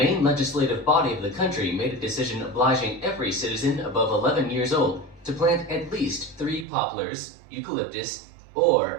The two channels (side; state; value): left; drops out; at 6.7 s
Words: legislative body of the country made a decision obliging every citizen above 11 years old to plant at least 3 poplars, eucalyptus,